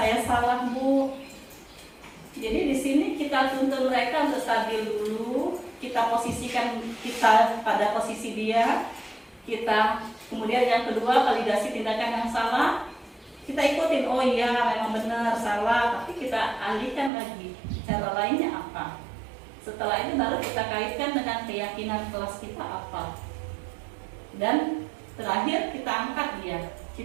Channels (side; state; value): left; drops out; at 17.1 s